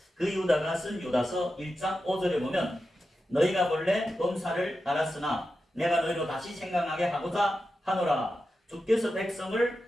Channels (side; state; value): both; normal; correlation 0.90